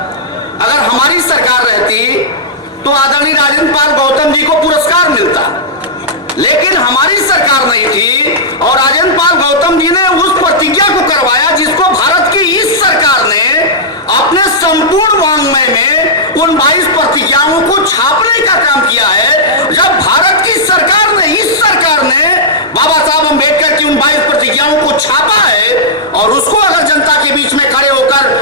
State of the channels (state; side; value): normal; both; correlation -0.11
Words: अगर हमारी सरकार रहती तो आदरणीय राजेंद्र पाल गौतम जी को पुरस्कार मिलता, लेकिन हमारी सरकार नहीं थी और राजेंद्र पाल गौतम जी ने उस प्रतिज्ञा को करवाया जिसको भारत की इस सरकार ने अपने संपूर्ण वांग्मय में उन 22 प्रतिज्ञाओं को छापने का काम किया है। जब भारत की सरकार ने, इस सरकार ने बाबा साहब अम्बेडकर की उन 22 प्रतिज्ञाओं को छापा है और उसको अगर जनता के बीच में खड़े